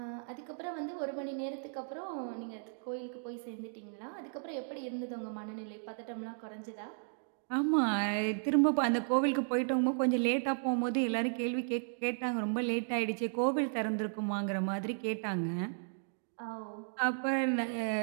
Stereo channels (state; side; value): silent; left; digital silence